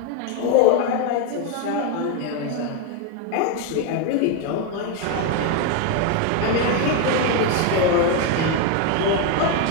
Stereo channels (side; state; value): both; different; correlation 0.02